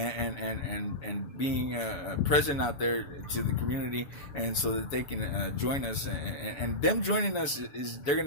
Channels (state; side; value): late; right; 7.1 ms